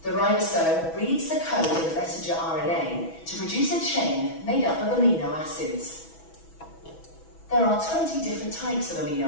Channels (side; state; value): right; late; 6.1 ms